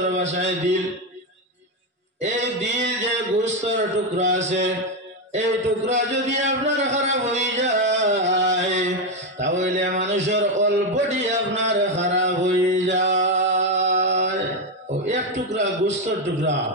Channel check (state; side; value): normal; both; correlation 0.08